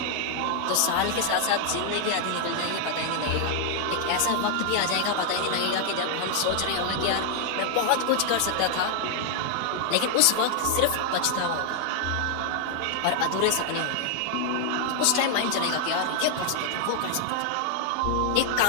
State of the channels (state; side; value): different; both; correlation 0.00